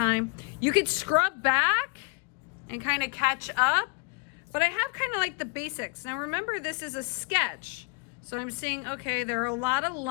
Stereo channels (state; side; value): quieter; right; 33.3 dB